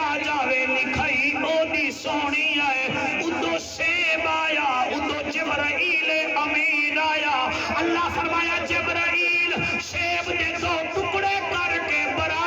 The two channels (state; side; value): identical; both; correlation 1.00